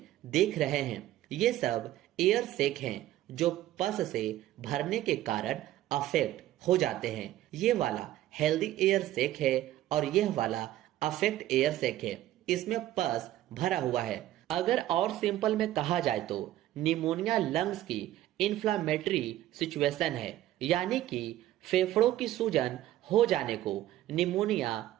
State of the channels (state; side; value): quieter; left; 14.1 dB